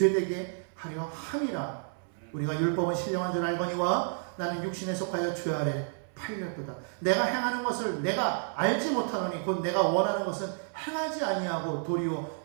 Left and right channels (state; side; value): silent; left; 57 dB below the other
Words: 하려 함이라. 우리가 율법은 신령한 줄 알거니와 나는 육신에 속하여 죄 아래 팔렸도다. 내가 행하는 것을 내가 알지 못하노니 곧 내가 원하는 것은 행하지 아니하고 도리어